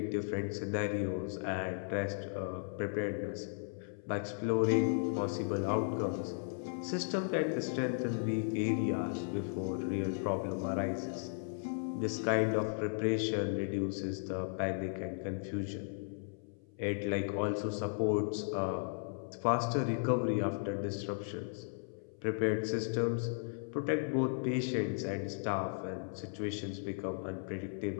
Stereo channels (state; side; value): silent; right; 54 dB below the other